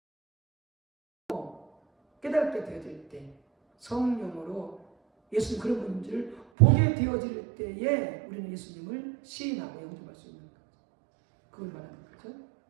깨닫게 되어질 때, 성령으로 예수님 그런 분들을 보게 되어질 때에 우리는 예수님을 시인하고 영접할 수 있는 거죠. 그걸 말하는 거죠.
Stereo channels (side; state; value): left; drops out; at 6.5 s